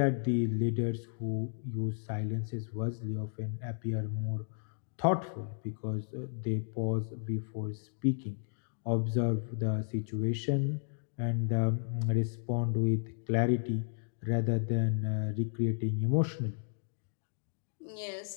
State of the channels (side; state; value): right; silent; digital silence